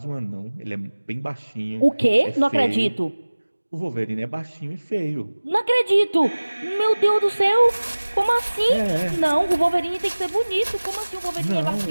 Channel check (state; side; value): inverted; both; correlation -1.00